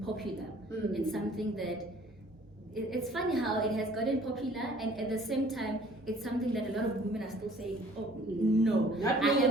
popular. It's something that, it's funny how it has gotten popular, and at the same time, it's something that a lot of women are still saying, oh, no, I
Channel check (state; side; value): noise; right; hum, 28 dB below the sound